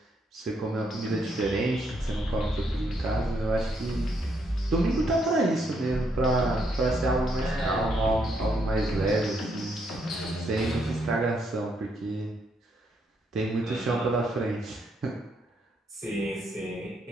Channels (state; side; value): normal; both; correlation 0.75